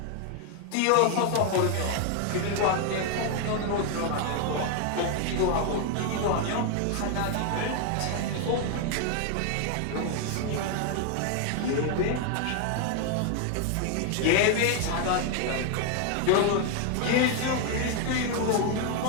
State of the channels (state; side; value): different; both; correlation 0.01